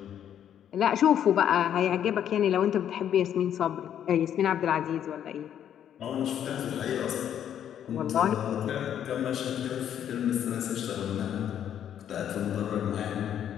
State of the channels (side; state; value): right; quieter; 9.8 dB